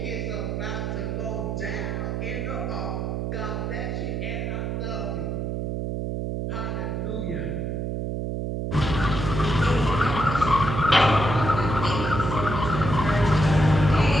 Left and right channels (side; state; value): right; noise; hum, 2 dB below the sound